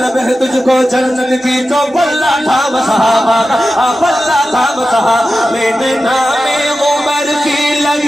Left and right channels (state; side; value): normal; both; correlation 0.93